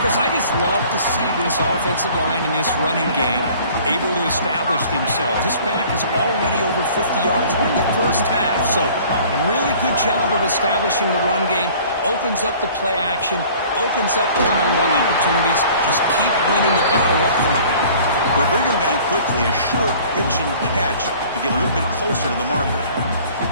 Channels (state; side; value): inverted; both; correlation -0.50